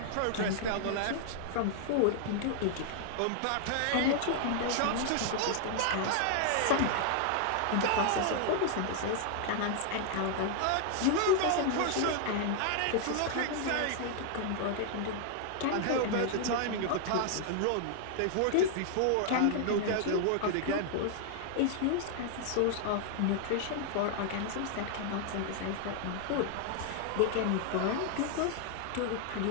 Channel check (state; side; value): different; both; correlation 0.00